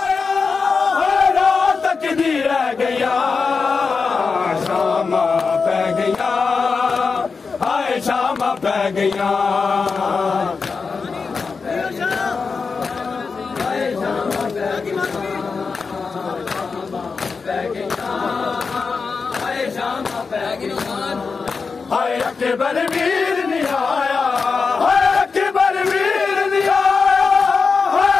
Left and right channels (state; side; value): quieter; right; 4.9 dB